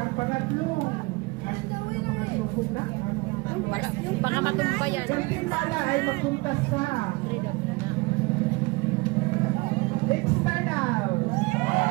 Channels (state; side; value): quieter; left; 25.0 dB